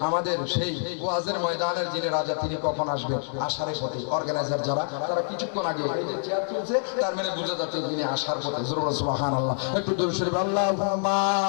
আমাদের সেই ওয়াজের ময়দানের যিনি রাজা, তিনি কখন আসবেন? আসার পথে। অর্গানাইজার যারা, তারা কিছুক্ষণ আগে এই যে চেয়ার তুলছে, তার মানে বোঝা যাচ্ছে তিনি আসার পথে। জোরে বলেন সুবহানাল্লাহ। একটু দরুদ শরীফ আল্লাহুম্মা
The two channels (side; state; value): right; silent; 60 dB below the other